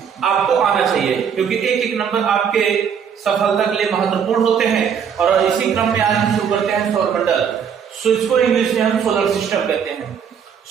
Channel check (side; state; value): left; quieter; 7.5 dB